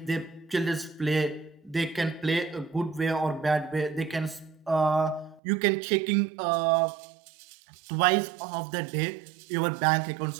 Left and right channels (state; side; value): drops out; left; at 5.4 s